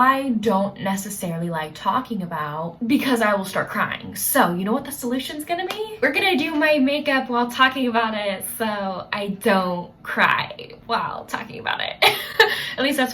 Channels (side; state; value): both; identical; correlation 1.00